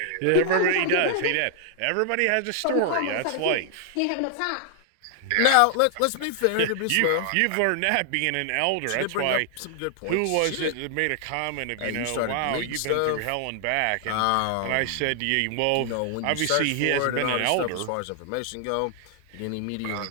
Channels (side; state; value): both; different; correlation 0.00